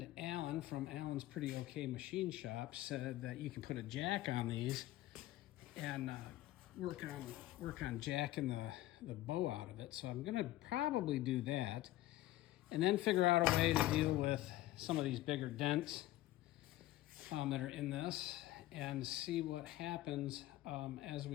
Alan from Alan's Pretty Okay Machine Shop said that you can put a jack on these and work on jacking the bow out of it. So I'm going to probably do that, and then figure out a way to deal with some of these bigger dents that are in this, and see what happens as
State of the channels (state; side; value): quieter; right; 15.9 dB